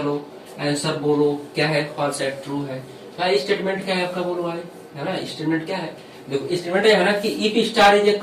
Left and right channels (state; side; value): identical; both; correlation 1.00